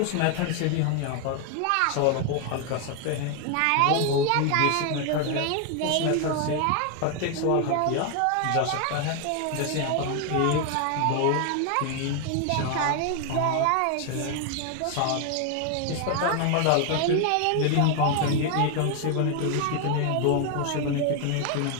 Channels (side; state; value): both; different; correlation 0.01